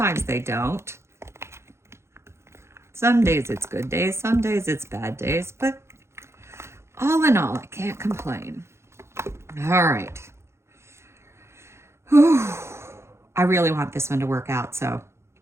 they don't. Some days it's good days, some days it's bad days, but all in all, I can't complain. All right. Whew. I really want this one to work out, so.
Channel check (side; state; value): left; late; 0.13 ms